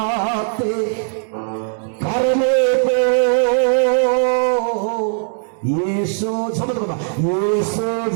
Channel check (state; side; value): silent; left; digital silence